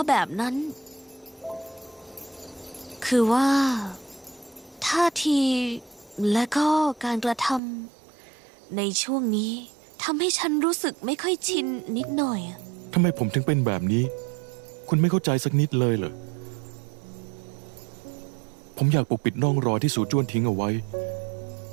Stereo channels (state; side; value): drops out; left; at 7.6 s